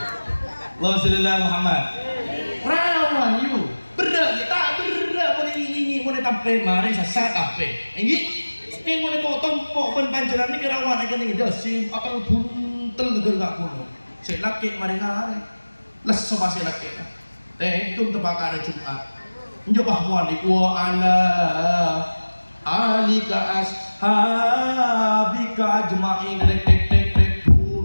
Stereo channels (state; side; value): inverted; both; correlation -1.00